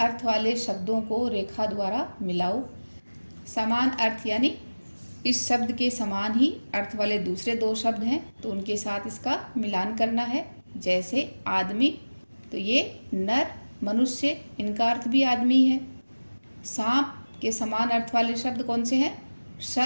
वाले शब्दों को रेखा द्वारा मिलाओ। समान अर्थ यानी इस शब्द के समान ही अर्थ वाले दूसरे 2 शब्द हैं तो उनके साथ इसका मिलान करना है। जैसे आदमी, तो ये नर, मनुष्य, इनका अर्थ भी आदमी है। सांप के समान अर्थ वाले शब्द कौन से हैं?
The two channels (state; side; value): inverted; both; correlation -1.00